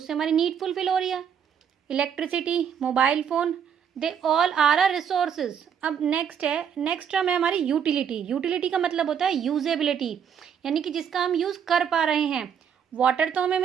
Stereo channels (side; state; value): left; quieter; 7.9 dB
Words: हमारी नीड फुलफिल हो रही है। Electricity, mobile phone, they all are a resources. अब नेक्स्ट टर्म है हमारी यूटिलिटी। यूटिलिटी का मतलब होता है यूजेबिलिटी, यानी कि जिसका हम यूज़ कर पा रहे हैं। वाटर तो हमें